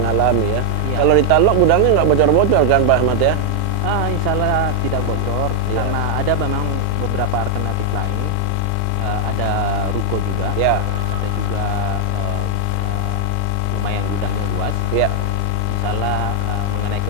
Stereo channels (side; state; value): both; different; correlation 0.00